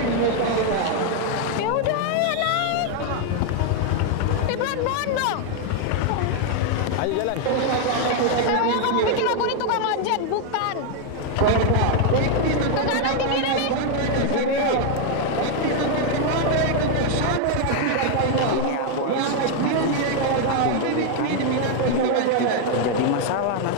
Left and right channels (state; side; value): different; both; correlation 0.00